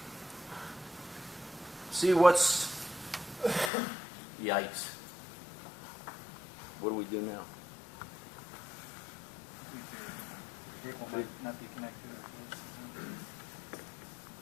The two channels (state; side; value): drops out; right; at 3.7 s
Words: what's... Yikes. What do we do now? Cable might not be connected.